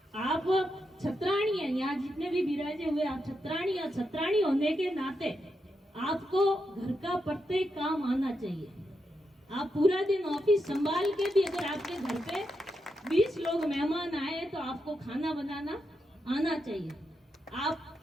आप छत्राणी हैं, यहाँ जितने भी विराजे हुए आप छत्राणी, और छत्राणी होने के नाते आपको घर का प्रत्येक काम आना चाहिए। आप पूरा दिन ऑफिस संभाल के भी अगर आपके घर पे 20 लोग मेहमान आए तो आपको खाना बनाना आना चाहिए। आप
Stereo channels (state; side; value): normal; both; correlation 0.85